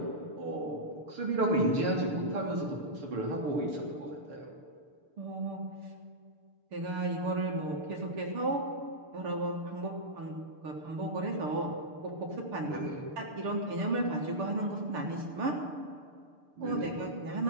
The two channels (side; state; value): left; late; 6.8 ms